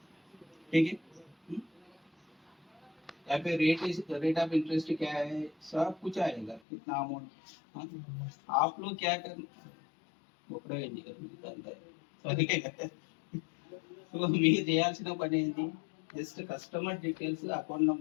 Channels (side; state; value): right; drops out; at 6.6 s